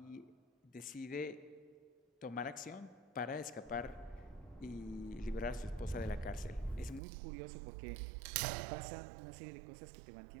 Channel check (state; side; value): drops out; left; at 7.0 s